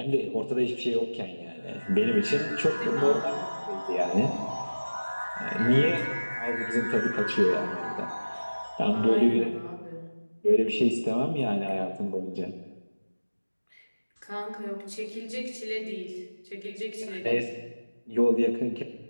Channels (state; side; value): inverted; both; correlation -1.00